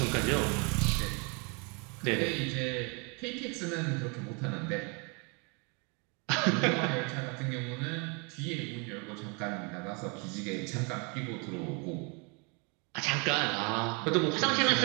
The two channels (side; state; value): left; quieter; 32.7 dB